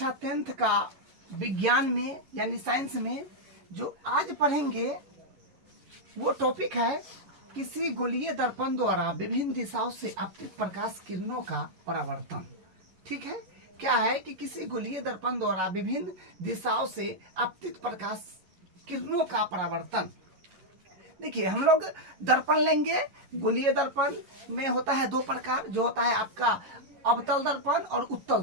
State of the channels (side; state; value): left; late; 11 ms